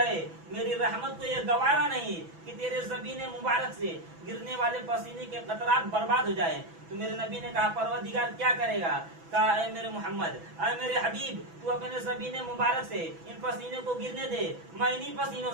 میری رحمت کو یہ گوارا نہیں کہ تیرے زبین مبارک سے گرنے والے پسینے کے قطرات برباد ہو جائیں۔ تو میرے نبی نے کہا پروردگار کیا کرے گا؟ کہا اے میرے محمد، اے میرے حبیب تو اپنے زبین مبارک سے ان پسینے کو گرنے دے، میں انہی پسینوں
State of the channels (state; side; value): late; left; 6.0 ms